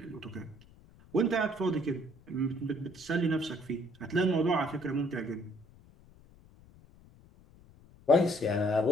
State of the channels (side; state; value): left; noise; rumble, 25 dB below the sound